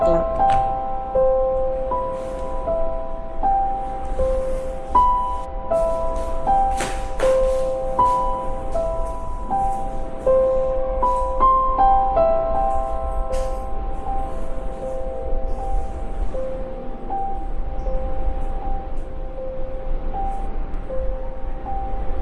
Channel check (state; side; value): identical; both; correlation 1.00